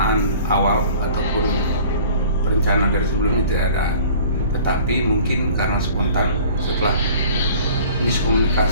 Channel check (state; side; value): inverted; both; correlation -0.48